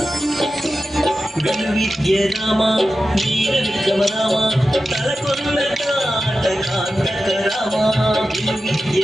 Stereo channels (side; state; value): both; normal; correlation 0.92